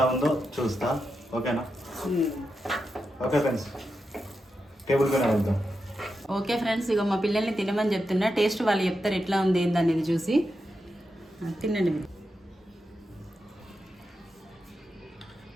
ఉందో చూస్తా. ఓకేనా? ఓకే ఫ్రెండ్స్, టేబుల్ పైన వెళ్దాం. ఓకే ఫ్రెండ్స్, ఇక మా పిల్లల్ని తినమని చెప్తున్నా. టేస్ట్ వాళ్ళు చెప్తారు ఎట్లా ఉంది ఏందనేది చూసి. తినండి మీరు.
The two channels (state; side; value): normal; both; correlation 0.88